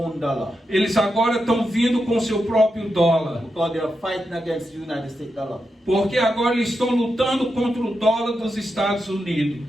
dollar. Eles agora estão vindo com seu próprio dólar. Because they are fighting against the United States dollar. Porque agora eles estão lutando contra o dólar dos Estados Unidos.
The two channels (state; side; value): normal; both; correlation 0.87